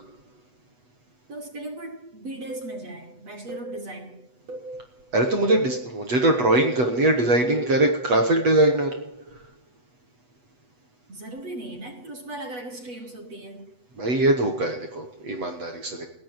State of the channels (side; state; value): left; late; 8.1 ms